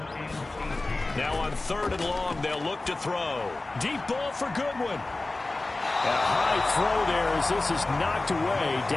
Now on 3rd and long, they'll look to throw. Deep ball for Goodwin. A high throw there as this is knocked away,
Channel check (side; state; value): right; quieter; 3.1 dB